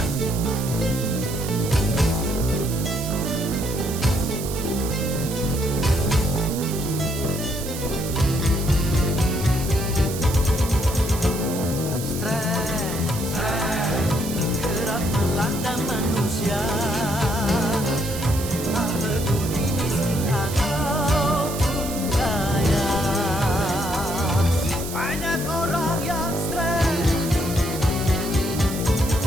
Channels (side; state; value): right; noise; hiss, 9 dB below the sound